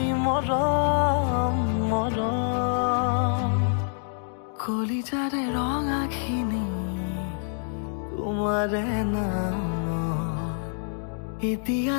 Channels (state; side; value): silent; right; digital silence